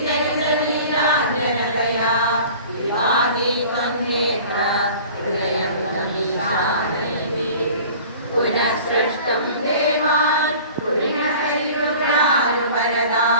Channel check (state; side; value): inverted; both; correlation -0.44